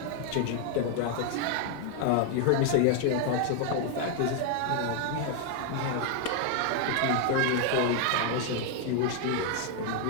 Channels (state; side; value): different; both; correlation 0.00